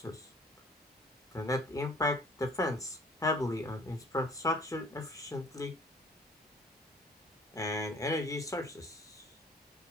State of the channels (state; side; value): normal; both; correlation 0.54